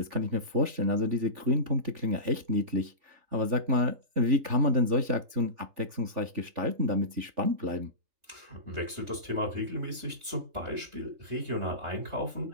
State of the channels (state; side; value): late; left; 3.4 ms